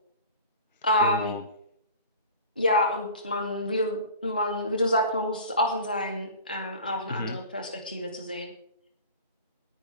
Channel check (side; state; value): both; inverted; correlation -0.38